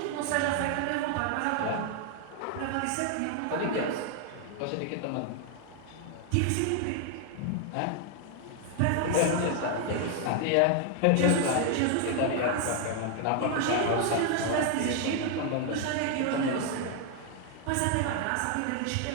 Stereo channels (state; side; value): different; both; correlation 0.00